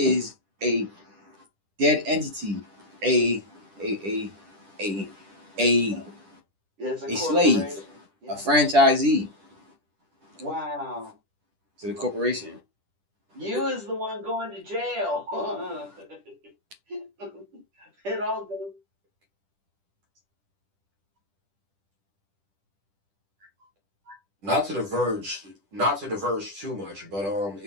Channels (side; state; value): left; late; 10 ms